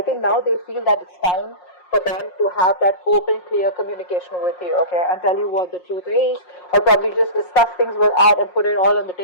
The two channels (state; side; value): late; right; 5.6 ms